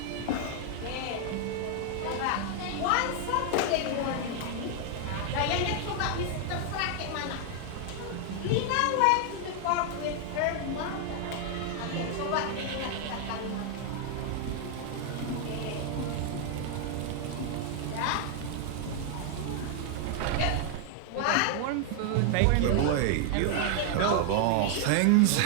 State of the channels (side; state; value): both; different; correlation 0.00